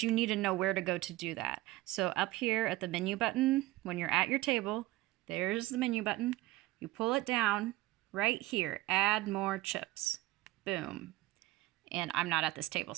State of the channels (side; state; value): left; quieter; 18.1 dB